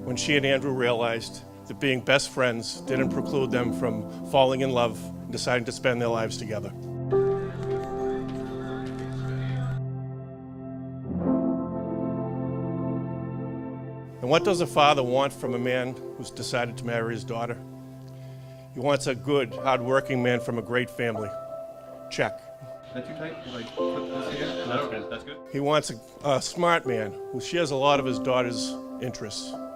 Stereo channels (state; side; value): identical; both; correlation 1.00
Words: when she and Andrew realized that being best friends didn't preclude them from falling in love and deciding to spend their lives together. And what does a father want from a man who's decided to marry his daughter? He wants a good, hard-working man from a great family. Check. Is that too tight? Like, put this here? No, that's good. He wants a smart man who shares a lot of his daughter's interests.